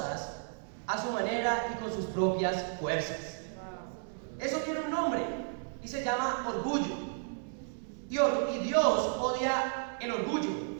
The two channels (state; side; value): silent; left; 56 dB below the other